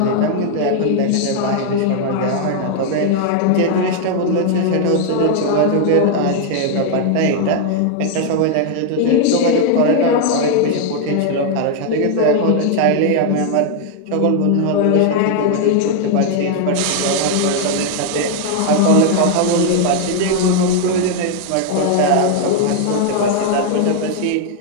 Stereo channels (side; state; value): both; different; correlation 0.00